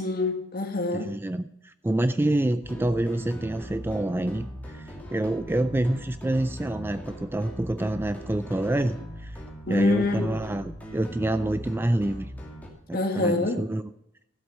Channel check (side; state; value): both; normal; correlation 0.82